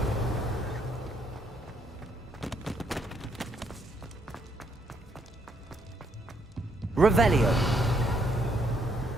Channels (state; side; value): normal; both; correlation 0.72